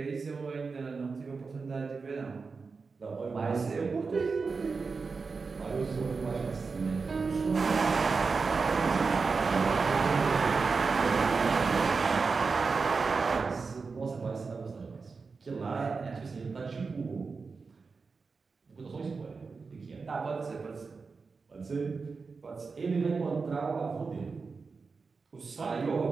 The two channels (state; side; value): quieter; left; 4.7 dB